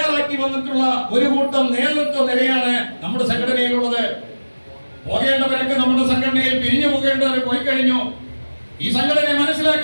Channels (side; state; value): both; inverted; correlation -1.00